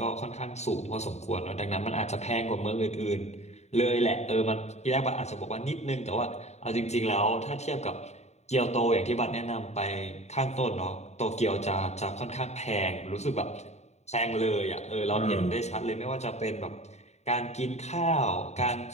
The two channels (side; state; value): right; late; 0.32 ms